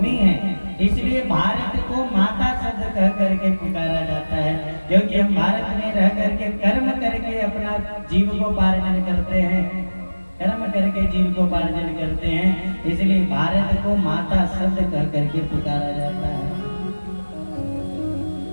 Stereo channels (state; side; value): inverted; both; correlation -1.00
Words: है, इसलिए भारत को माता शब्द कह करके पुकारा जाता है, क्योंकि हम भारत में रह करके कर्म करके अपना जीविकोपार्जन करते हैं। कर्म करके जीविकोपार्जन करते हैं, इसलिए भारत को माता शब्द कह करके पुकारा जाता है।